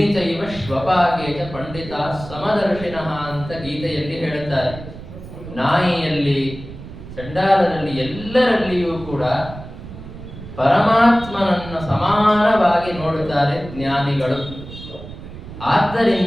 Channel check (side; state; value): right; noise; rumble, 13 dB below the sound